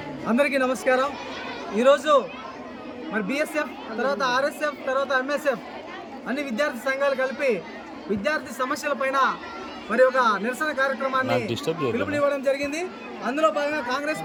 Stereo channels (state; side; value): identical; both; correlation 1.00